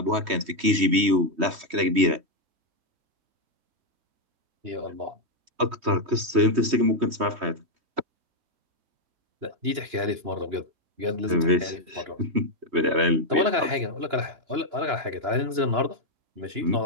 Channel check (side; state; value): left; late; 3.1 ms